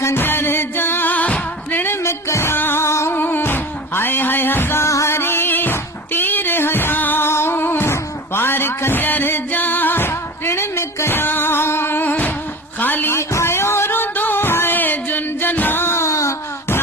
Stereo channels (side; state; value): both; normal; correlation 0.34